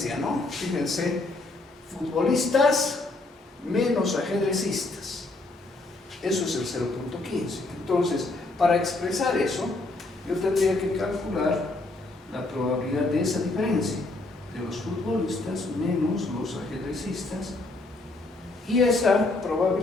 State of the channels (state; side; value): quieter; right; 3.1 dB